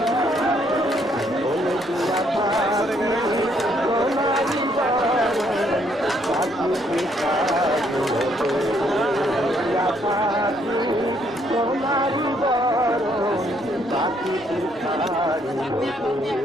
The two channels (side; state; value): both; normal; correlation 0.70